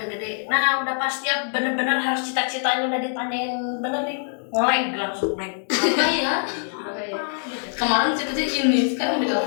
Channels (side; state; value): right; silent; 63 dB below the other